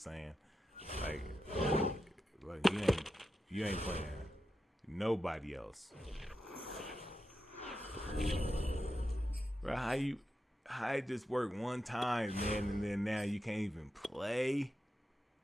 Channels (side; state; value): both; normal; correlation 0.88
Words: Like you ain't playing nobody else. Bro, how it just work one time, man, and then now you can't even play?